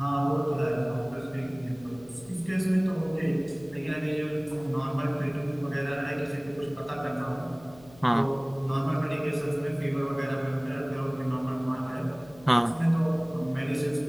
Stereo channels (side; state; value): left; noise; hum, 22 dB below the sound